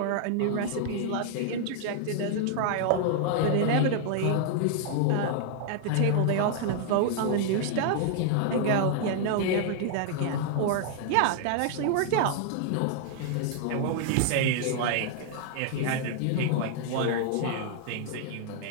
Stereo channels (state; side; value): different; both; correlation 0.00